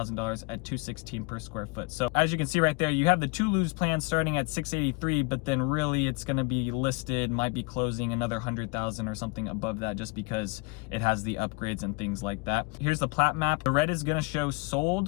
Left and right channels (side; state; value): right; quieter; 28.1 dB